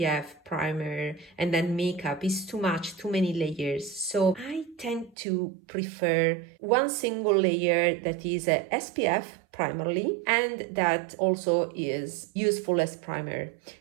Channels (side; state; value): left; drops out; at 5.2 s